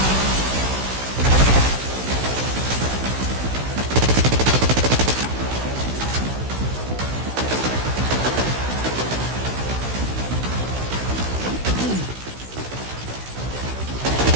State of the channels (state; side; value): late; left; 16 ms